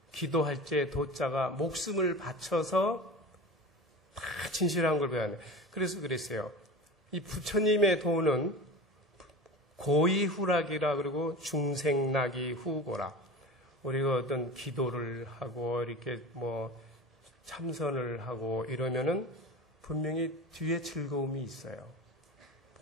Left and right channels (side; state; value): both; normal; correlation 0.32